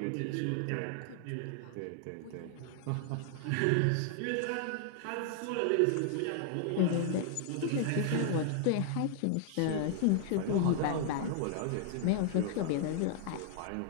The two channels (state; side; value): different; both; correlation 0.00